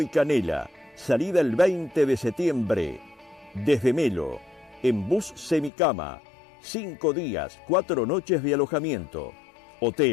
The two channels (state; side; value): drops out; right; at 5.7 s